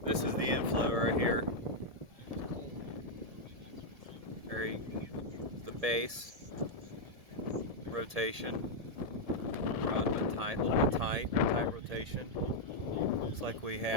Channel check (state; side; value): late; left; 1.7 ms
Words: This is the inflow right here. The base rotation. Run but tight, a little bit tight rotation. Looks like we